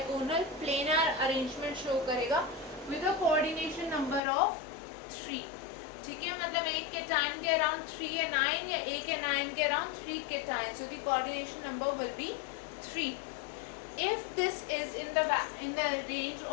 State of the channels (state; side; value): drops out; right; at 4.2 s